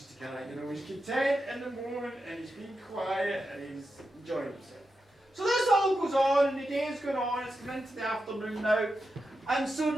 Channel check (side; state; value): both; normal; correlation 0.88